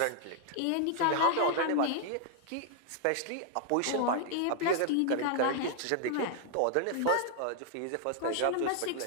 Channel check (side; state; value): both; different; correlation 0.00